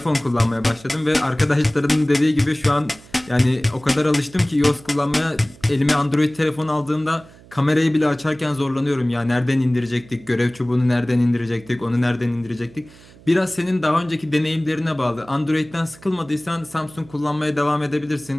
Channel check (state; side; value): noise; right; hum, 23 dB below the sound